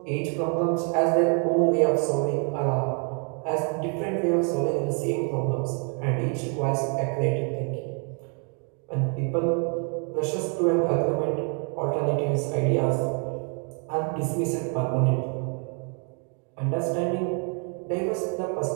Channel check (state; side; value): quieter; left; 39.6 dB